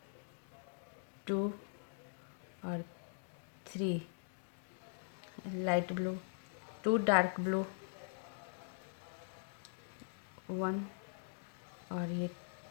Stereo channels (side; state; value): right; silent; digital silence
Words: 2 और 3 लाइट ब्लू 2 डार्क ब्लू 1 और ये